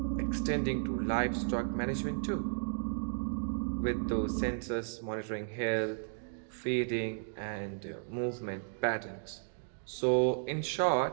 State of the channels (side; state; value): left; silent; digital silence